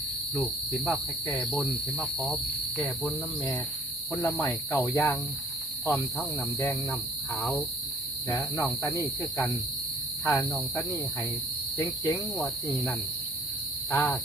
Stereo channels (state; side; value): normal; both; correlation 0.55